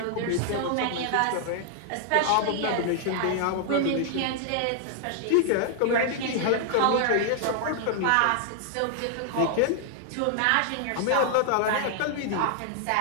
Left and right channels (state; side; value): different; both; correlation 0.00